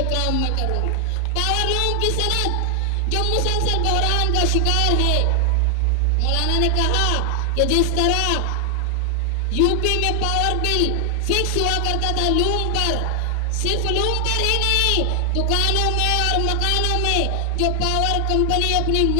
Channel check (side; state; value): both; different; correlation 0.00